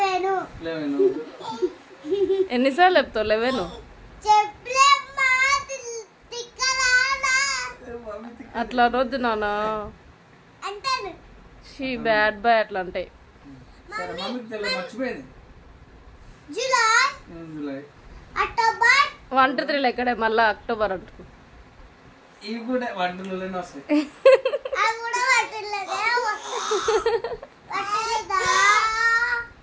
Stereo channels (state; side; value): identical; both; correlation 1.00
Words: ఎన్నిసార్లు చెప్తావు 11? అట్లా అనొద్దు నాన్న. షీ బ్యాడ్ బాయ్ అట్లా అంటే. మర్చిపోయింది. జూలై అక్టోబర్ 1 2 3 ఎక్కడే మళ్ళా అక్టోబర్ అంటు. ఇవి కూడా వంటలోనే వస్తాయి.